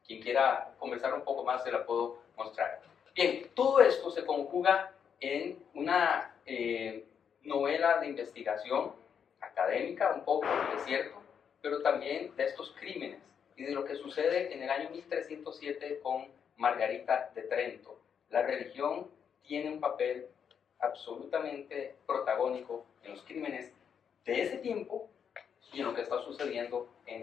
quiera conversar un poco más se la puedo mostrar. Bien, todo esto se conjuga en una novela de investigación académica, un poco, es cierto, pero también de estos crímenes y de lo que sucede en el año 1307 con Margarita de Trento. La religión tiene un papel absolutamente protagónico en los crímenes de ese tiempo y en lo que está sucediendo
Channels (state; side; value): quieter; right; 7.5 dB